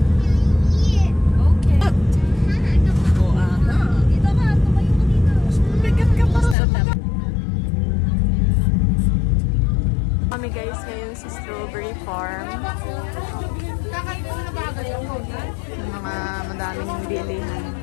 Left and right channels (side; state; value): right; drops out; at 6.6 s